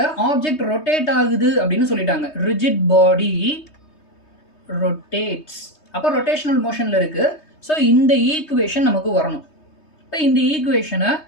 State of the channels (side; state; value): right; late; 3.2 ms